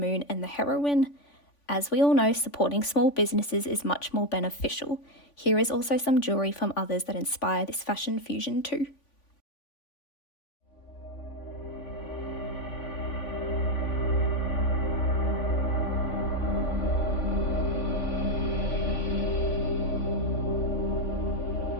and the Heroine. As we all know, supporting small businesses is much more beneficial. Here is also some jewellery from others that inspire this fashion fusion too.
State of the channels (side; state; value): right; late; 3.5 ms